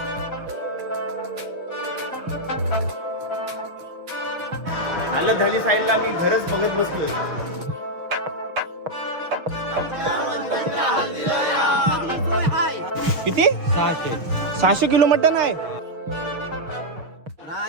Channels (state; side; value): late; left; 6.3 ms